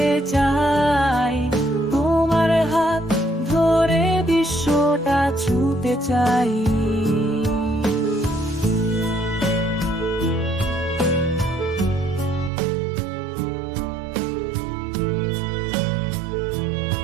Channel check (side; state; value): left; drops out; at 12.5 s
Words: চাই, তোমার হাত ধরে বিশ্বটা ছুঁতে চাই।